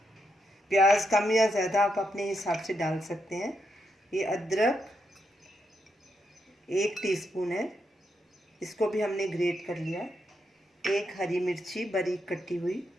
प्याज कम या ज़्यादा आप अपने हिसाब से डाल सकते हैं। ये अदरक 1 टीस्पून है, इसको भी हमने ग्रेट कर लिया। एक हरी मिर्ची बारीक कटी हुई,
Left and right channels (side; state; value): both; normal; correlation 0.81